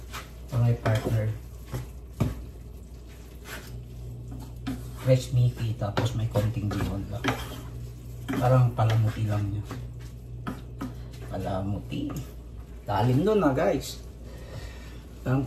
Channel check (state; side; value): identical; both; correlation 1.00